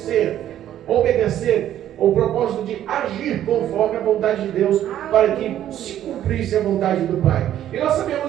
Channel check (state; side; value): quieter; left; 11.6 dB